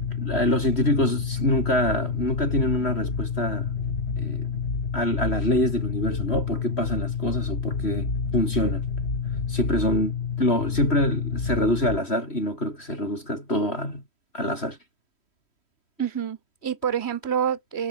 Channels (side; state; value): right; late; 3.1 ms